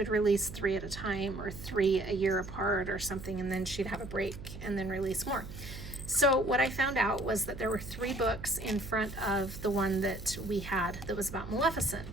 release 3 at a time, or 3 a year apart or something, and then she'd have a break and then release more. So what I found out was that there were 3 books in front of the one that we had that was about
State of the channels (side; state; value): right; noise; hum, 11 dB below the sound